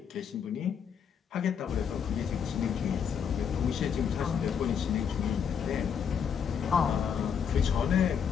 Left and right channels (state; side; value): quieter; right; 7.4 dB